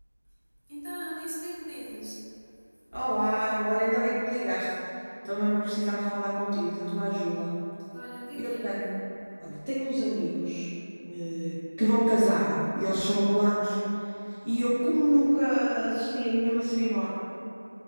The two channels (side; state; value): both; inverted; correlation -1.00